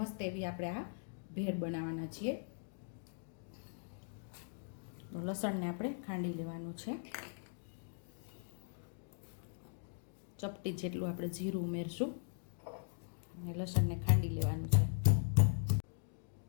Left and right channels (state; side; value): silent; right; digital silence